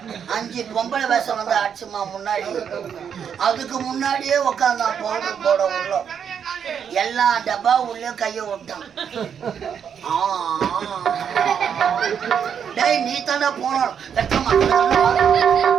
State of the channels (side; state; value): left; quieter; 7.8 dB